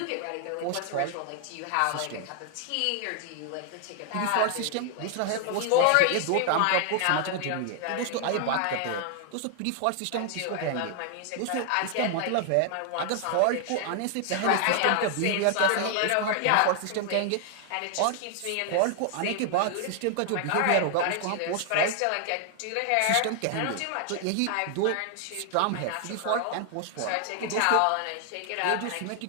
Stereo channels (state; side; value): different; both; correlation 0.00